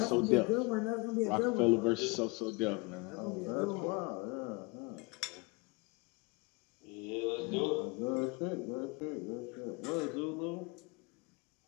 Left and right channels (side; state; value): right; quieter; 28.3 dB